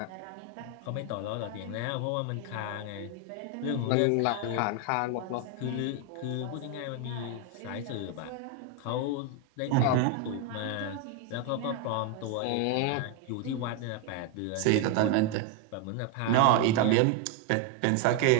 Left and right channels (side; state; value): both; different; correlation 0.01